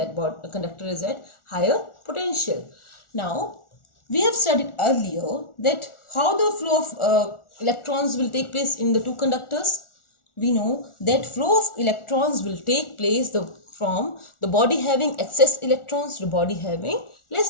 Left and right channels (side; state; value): right; late; 1.4 ms